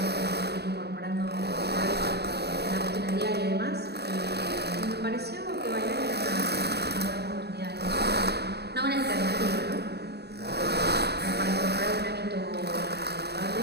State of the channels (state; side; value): late; left; 0.48 ms